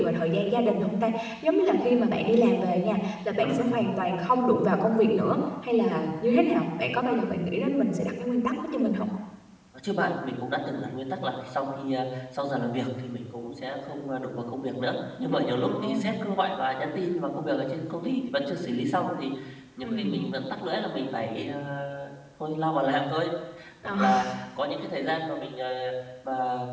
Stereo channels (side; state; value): both; identical; correlation 1.00